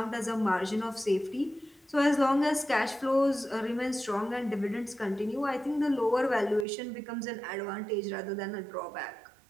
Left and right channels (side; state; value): left; drops out; at 6.7 s